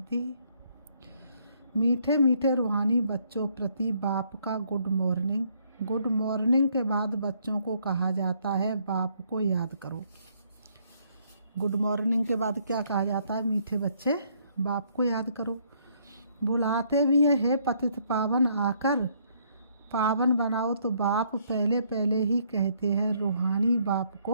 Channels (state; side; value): inverted; both; correlation -0.68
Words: मीठे मीठे रूहानी बच्चों प्रति बाप का गुड मॉर्निंग। गुड मॉर्निंग के बाद बच्चों को कहा जाता है, बाप को याद करो। गुड मॉर्निंग के बाद क्या कहा जाता है, मीठे बच्चे बाप को याद करो। बुलाते भी है पतित पावन आकर पावन बनाओ, तो बाप पहले पहले ही कहते हैं रूहानी बाप